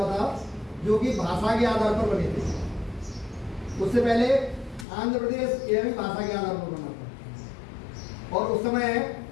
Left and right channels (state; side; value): drops out; right; at 4.9 s